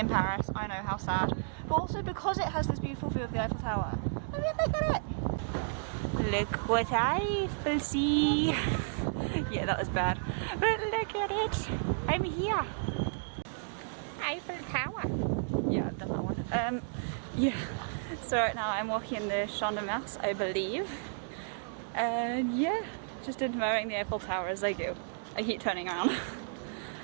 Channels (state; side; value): silent; left; digital silence